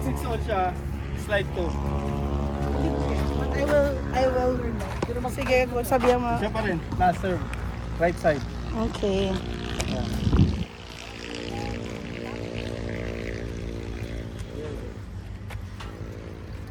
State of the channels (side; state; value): both; identical; correlation 1.00